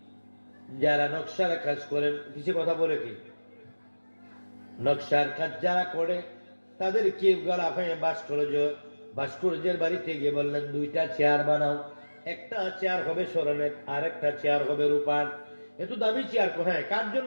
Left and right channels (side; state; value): both; inverted; correlation -1.00